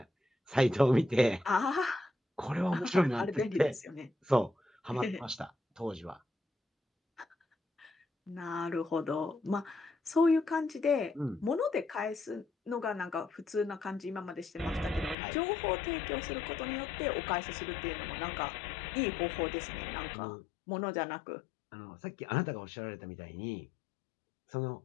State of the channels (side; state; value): right; drops out; at 15.2 s